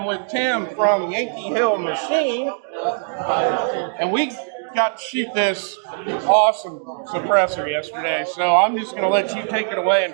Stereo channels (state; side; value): silent; left; digital silence